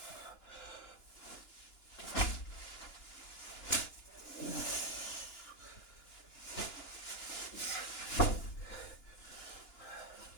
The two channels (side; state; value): right; late; 2.9 ms